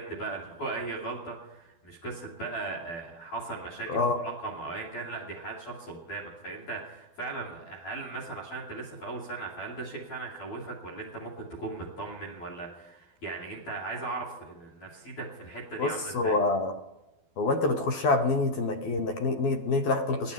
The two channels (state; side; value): late; right; 12 ms